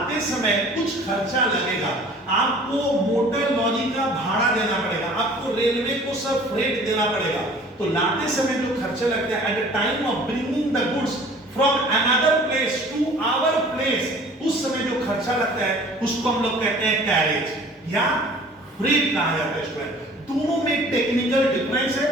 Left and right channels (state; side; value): normal; both; correlation 0.49